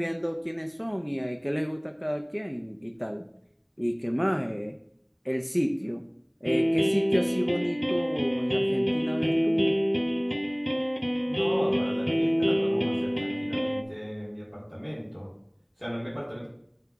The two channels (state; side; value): identical; both; correlation 1.00